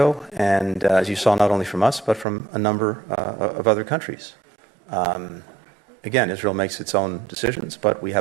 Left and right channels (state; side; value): drops out; left; at 2.2 s